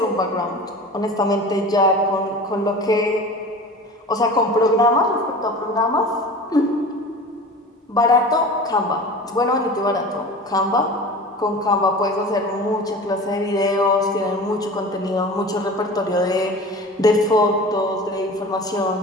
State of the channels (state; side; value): normal; both; correlation 0.36